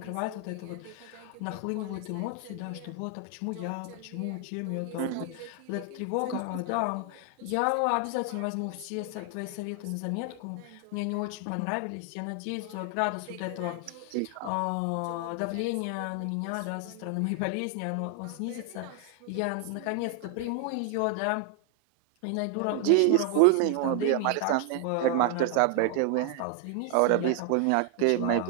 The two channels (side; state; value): both; different; correlation 0.00